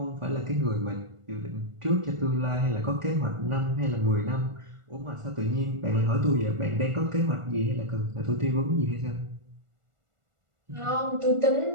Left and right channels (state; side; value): late; left; 1.4 ms